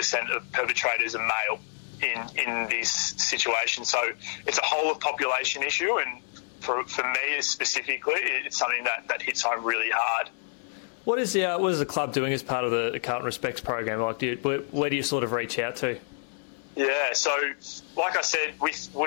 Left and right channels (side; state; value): right; silent; 59 dB below the other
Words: of perpetrators are male in this situation. So it's a whole of population issue, and for me specifically, it's something that hits home really hard. What is the club doing as part of the Carlton Respects program? Like, where do you sort of reach out to? Yeah, so like I said, with